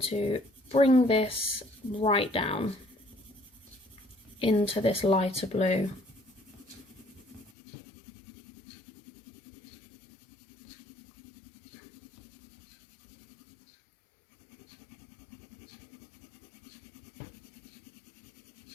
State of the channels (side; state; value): right; drops out; at 7.5 s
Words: to bring this right down into this lighter blue.